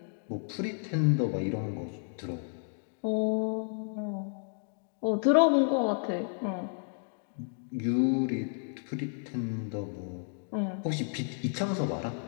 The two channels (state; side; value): silent; right; 57 dB below the other